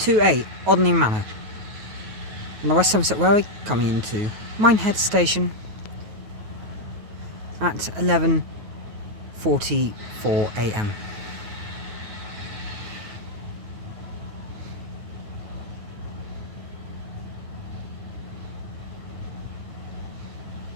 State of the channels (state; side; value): late; left; 9.3 ms